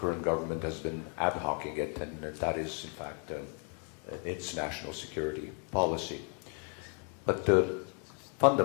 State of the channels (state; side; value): quieter; right; 37.9 dB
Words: government has been ad hocing it, and that is, in fact, its national security policy. But